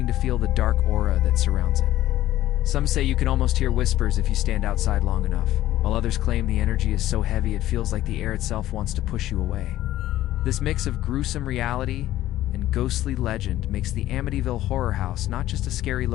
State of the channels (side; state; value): right; quieter; 14.3 dB